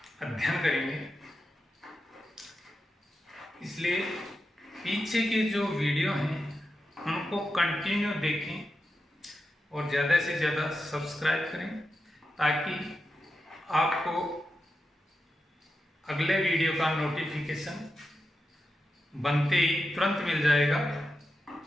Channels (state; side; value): normal; both; correlation 0.89